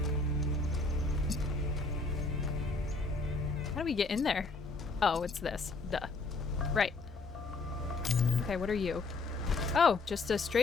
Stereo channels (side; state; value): right; quieter; 3.6 dB